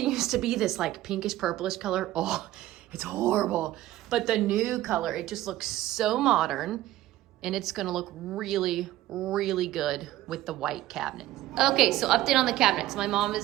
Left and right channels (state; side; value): quieter; left; 15.0 dB